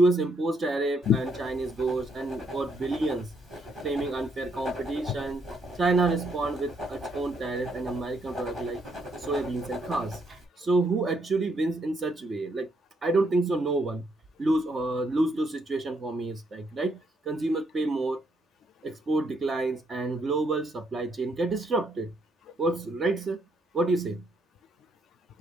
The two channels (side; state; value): both; normal; correlation 0.74